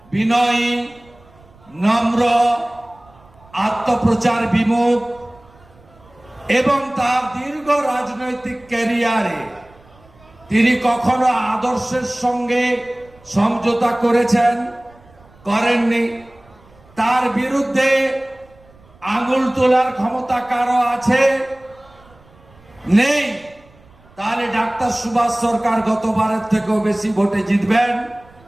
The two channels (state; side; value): noise; right; rumble, 27 dB below the sound